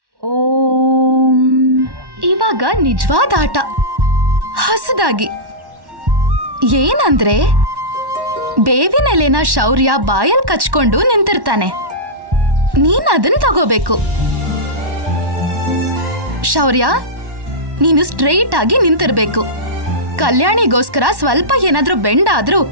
ಓಂ. ಇವಾಗ ನಿಜವಾದ ಆಟ ಹೊಸದಾಗಿ ಏನಂದ್ರೆ ಬೇವಿನ ಎಲೆನ ಶೌರ್ಯ ಬಾಯಲ್ ಕಚ್ಕೊಂಡು ನಿಂತಿರ್ತಾನೆ. ನೀನ್ ಅದನ್ನ ತಗೋಬೇಕು. ಶೌರ್ಯ, ನೀನು ಸ್ಟ್ರೈಟ್ ಆಗಿ ನಿಂತಿರ್ಬೇಕು. ಕಲ್ಯಾಣಿಗೋಸ್ಕರ ಸ್ವಲ್ಪ ಏನಾದ್ರೂ ಬೆಂಡ್ ಆದ್ರೂ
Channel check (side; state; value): left; late; 1.1 ms